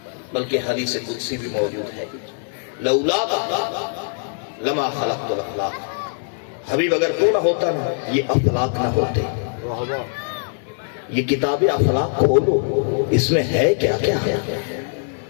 بلکہ حدیث قدسی بھی موجود ہے، لولا لما خلقت الافلاق، حبیب اگر تو نہ ہوتا نا یہ افلاق نہ ہوتے۔ یہ کتاب افلاق کھولو، اس میں ہے کیا کیا ہے؟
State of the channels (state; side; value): silent; right; digital silence